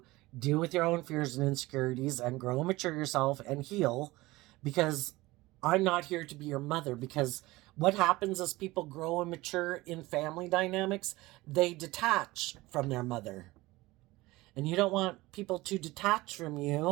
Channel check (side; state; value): left; quieter; 19.9 dB